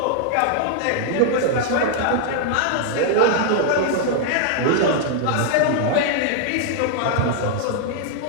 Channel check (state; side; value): different; both; correlation 0.00